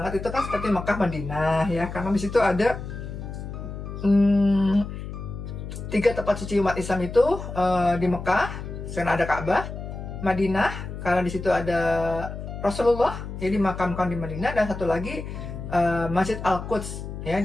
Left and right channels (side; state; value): left; noise; hum, 8 dB below the sound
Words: itu kan seperti Mekah, Madinah ya, karena di situ ada 3 tempat suci umat Islam itu di Mekah, karena ada Ka'bah, Madinah karena di situ ada Rasulullah, jadi dimakamkan di Madinah, dan satu lagi Masjid Al-Quds ya di